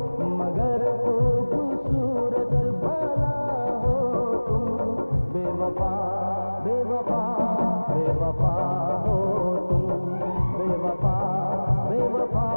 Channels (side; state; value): both; inverted; correlation -1.00